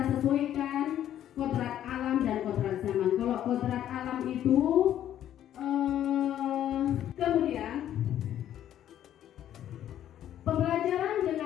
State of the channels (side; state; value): right; quieter; 11.2 dB